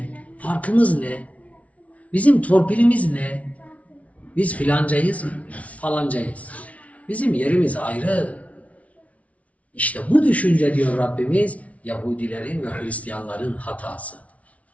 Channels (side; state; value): right; late; 0.066 ms